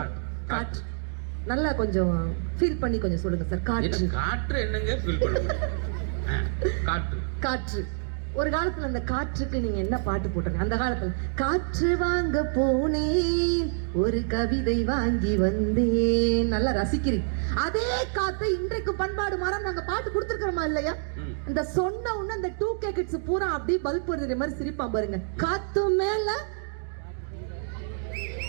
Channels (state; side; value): silent; left; 60 dB below the other